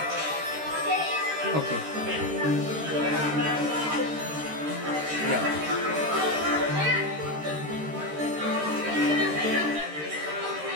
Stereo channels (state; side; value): late; left; 13 ms